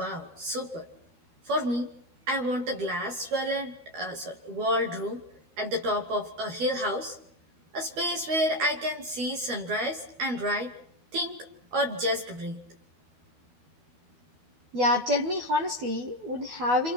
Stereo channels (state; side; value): late; left; 12 ms